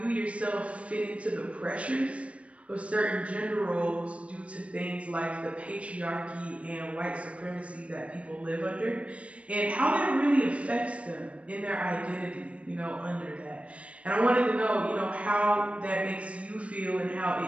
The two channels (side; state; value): left; late; 0.063 ms